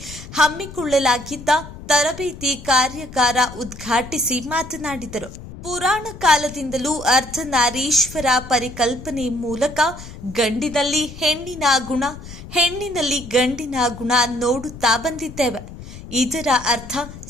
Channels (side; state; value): left; noise; rumble, 14 dB below the sound